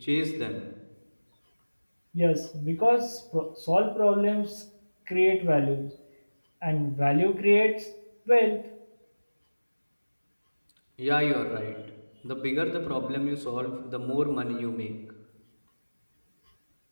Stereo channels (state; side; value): inverted; both; correlation -1.00